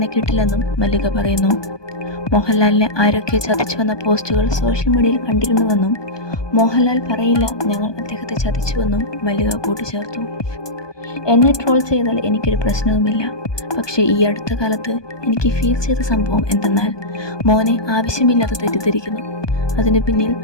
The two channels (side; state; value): right; late; 1.2 ms